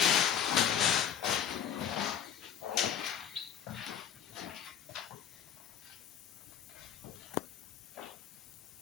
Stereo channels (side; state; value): right; quieter; 8.4 dB